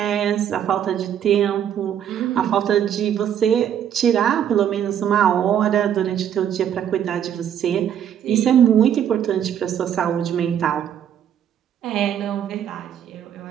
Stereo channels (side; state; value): left; quieter; 9.5 dB